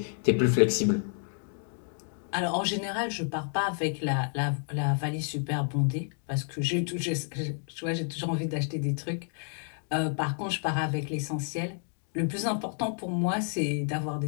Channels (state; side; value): silent; right; 58 dB below the other